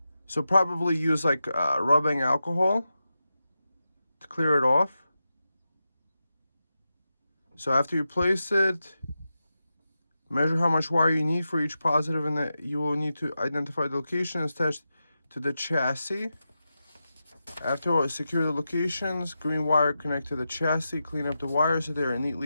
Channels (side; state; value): both; inverted; correlation -0.90